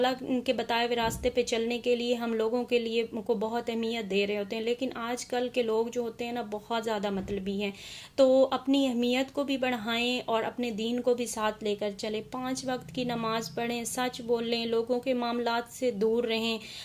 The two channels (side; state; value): both; identical; correlation 1.00